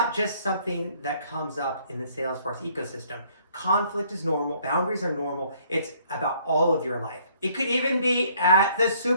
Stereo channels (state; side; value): inverted; both; correlation -0.62